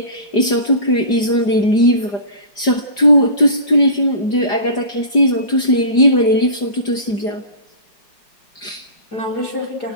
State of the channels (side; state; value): right; late; 5.0 ms